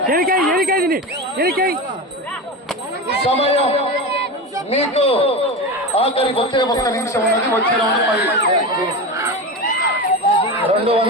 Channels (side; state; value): both; normal; correlation 0.23